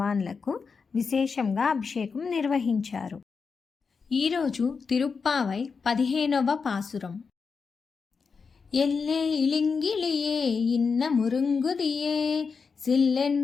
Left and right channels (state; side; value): quieter; right; 5.3 dB